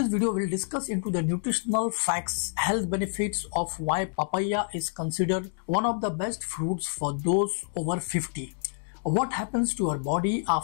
video, we'll discuss into the nutritional facts, health benefits of why papaya is considered one of the best fruits for those over 50. What happens to our body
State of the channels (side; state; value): right; silent; digital silence